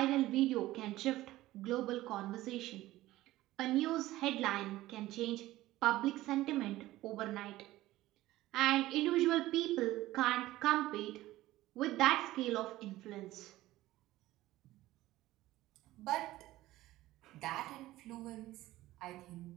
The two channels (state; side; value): quieter; left; 16.4 dB